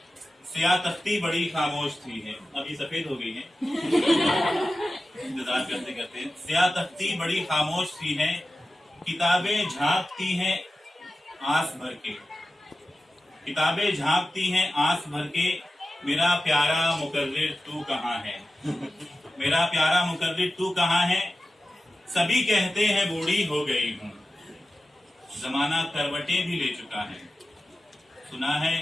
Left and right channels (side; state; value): both; normal; correlation 0.94